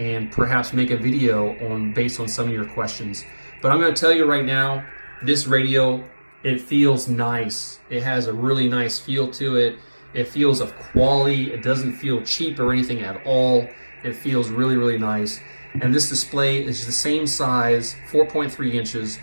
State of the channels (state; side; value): inverted; both; correlation -1.00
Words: perhaps make a video based on some of your questions. But I'm going to tell you right now, this radio, it feels nice. It has a really nice feel to it. It feels of quality. It doesn't feel cheap or anything at all. It feels really, really nice. And this display is the same size, 4.3 inches,